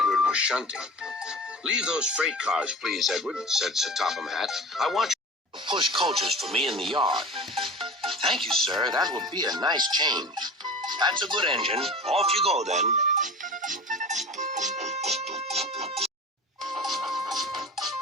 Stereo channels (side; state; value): both; normal; correlation 0.35